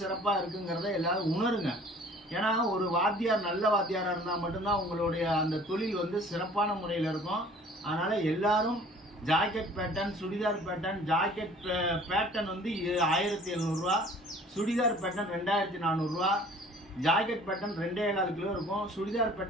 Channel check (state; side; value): normal; both; correlation 0.51